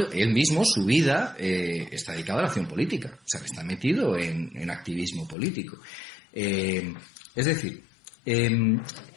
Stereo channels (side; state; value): right; drops out; at 5.4 s